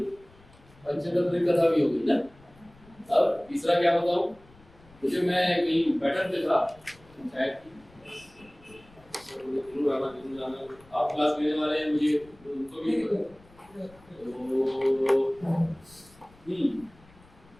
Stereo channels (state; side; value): noise; left; rumble, 26 dB below the sound